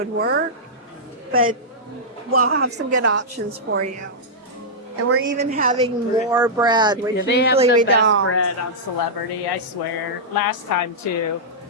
work. But we'll have some good options for you. And we're even having more bread, which Yeah, they have usually the we best don't. bread on Celebrity, I swear. Last time too.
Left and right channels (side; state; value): both; normal; correlation -0.10